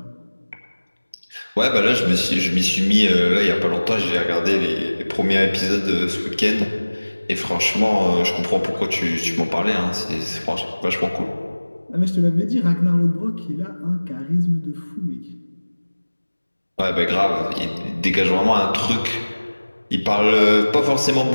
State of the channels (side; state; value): both; inverted; correlation -1.00